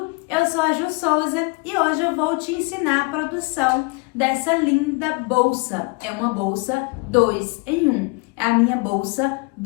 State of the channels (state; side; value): quieter; right; 29.6 dB